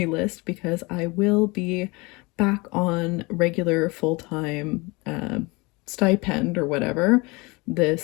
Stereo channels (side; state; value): right; quieter; 25.6 dB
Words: list, because I will be back on regular full-time stipend or whatever